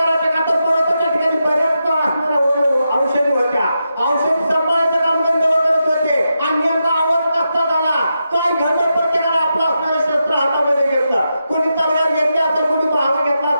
का तर पर्वताच्या ठिकाणी बऱ्याच असणाऱ्या औषधी होत्या. औषधी सांभाळायचं काम गंधर्व करत होते आणि नेमका आवाज कसा झाला. काय घडलं प्रत्येकाला आपलं असणारे शस्त्र हातामध्ये घेतलं. कोणी तलवार घेतली असेल, कोणी भावा घेतला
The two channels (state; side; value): inverted; both; correlation -0.87